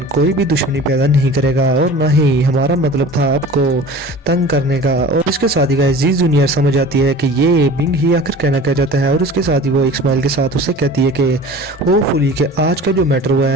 कोई भी दुश्मनी पैदा नहीं करेगा, और ना ही हमारा मतलब था आपको तंग करने का। और इसके साथ ही गाइस जी जूनियर समझ आती है कि ये बिंग ही आखिर कहना क्या चाहता है, और इसके साथ ही वो एक स्माइल के साथ उससे कहती है कि होपफुली कि आज का जो मैटर हुआ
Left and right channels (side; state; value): both; normal; correlation 0.40